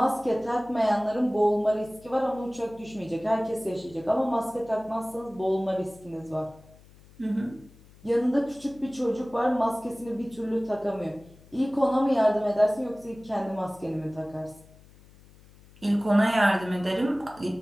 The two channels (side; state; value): left; noise; hum, 25 dB below the sound